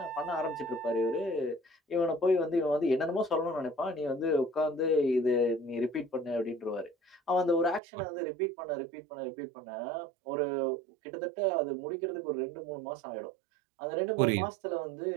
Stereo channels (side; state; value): left; drops out; at 7.8 s